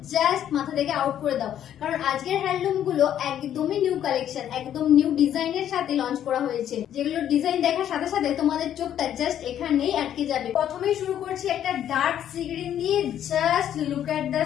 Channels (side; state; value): right; quieter; 10.5 dB